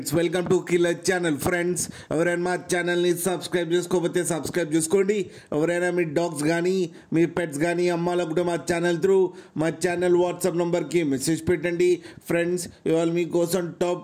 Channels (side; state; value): both; identical; correlation 1.00